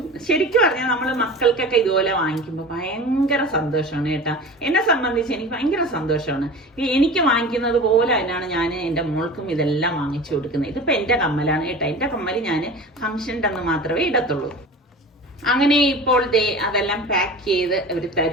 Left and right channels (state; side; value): normal; both; correlation 0.35